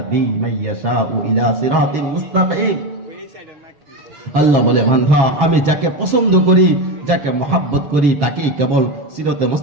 মান ইয়াশাউ ইলা সিরাতিন মুস্তাকিম। আল্লাহ বলে বান্দা আমি যাকে পছন্দ করি, যাকে মহব্বত করি তাকেই কেবল সিরাতে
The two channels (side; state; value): left; late; 6.3 ms